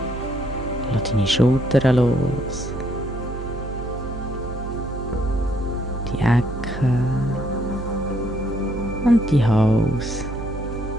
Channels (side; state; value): right; noise; hum, 8 dB below the sound